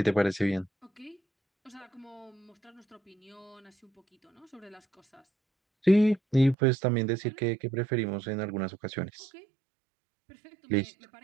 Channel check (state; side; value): drops out; left; at 6.6 s